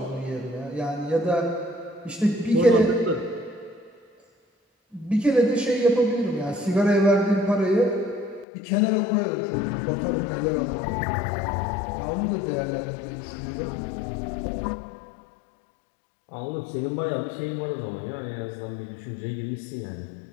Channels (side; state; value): right; drops out; at 8.5 s